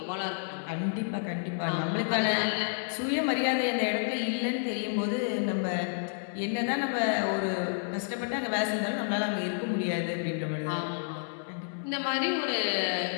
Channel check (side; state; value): right; silent; digital silence